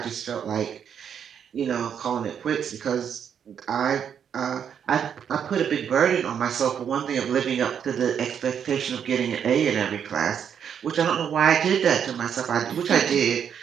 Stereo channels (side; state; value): left; quieter; 8.1 dB